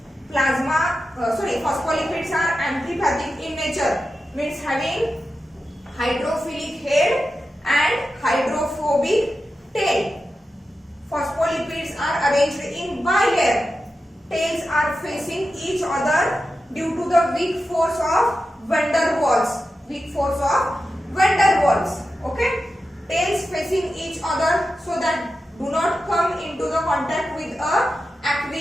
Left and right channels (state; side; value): normal; both; correlation 0.91